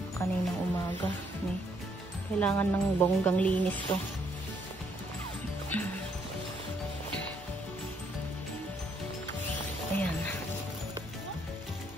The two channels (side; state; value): both; normal; correlation 0.71